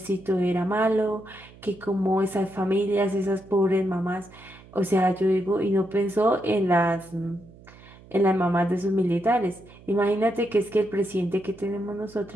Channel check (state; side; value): noise; right; hum, 22 dB below the sound